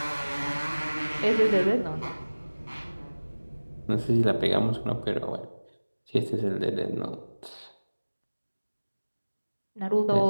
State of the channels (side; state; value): both; inverted; correlation -1.00